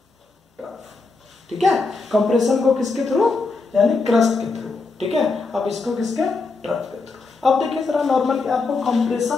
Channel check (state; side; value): quieter; right; 3.9 dB